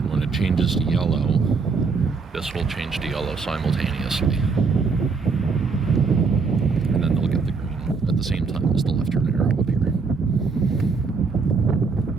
when it changes to yellow, this will change to yellow simultaneously. And then they'll get the green at the same time as the left turn arrow up here.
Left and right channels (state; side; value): quieter; left; 4.7 dB